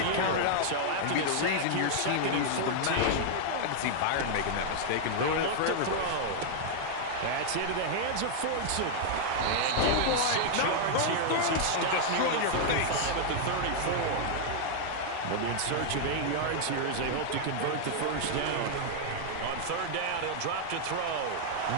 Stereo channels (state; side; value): different; both; correlation -0.01